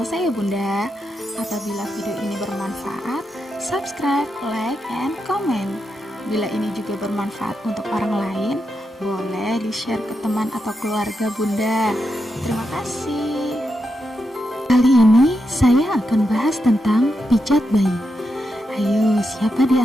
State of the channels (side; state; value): both; normal; correlation 0.85